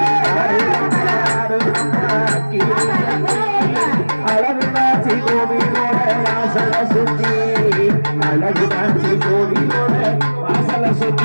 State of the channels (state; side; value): inverted; both; correlation -1.00